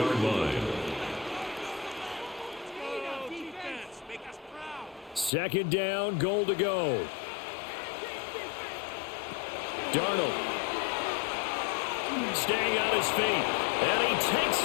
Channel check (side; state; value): right; drops out; at 5.3 s